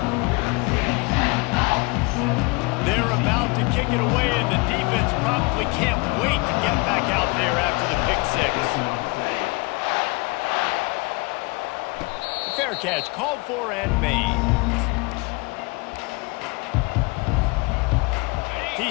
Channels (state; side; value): quieter; right; 27.1 dB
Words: They're about to kick it away, and the defense probably can't wait to get back out there after the pick 6. Fair catch called for and made.